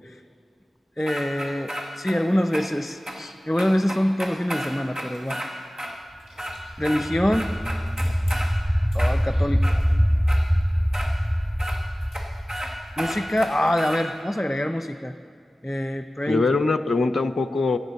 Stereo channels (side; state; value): both; normal; correlation 0.97